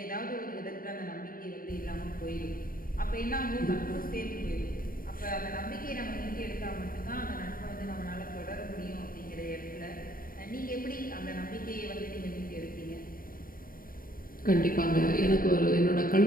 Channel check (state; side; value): late; right; 0.41 ms